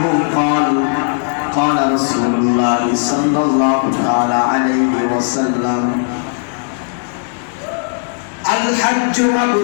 قال قال رسول الله صلى الله تعالى عليه وسلم الحج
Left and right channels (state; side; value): silent; right; 69 dB below the other